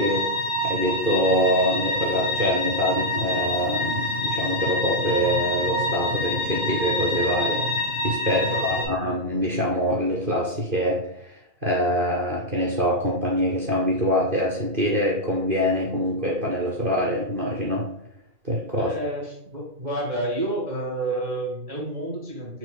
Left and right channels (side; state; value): left; late; 2.5 ms